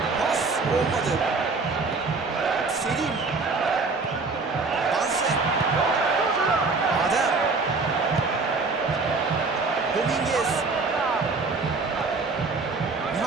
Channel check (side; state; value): left; quieter; 4.0 dB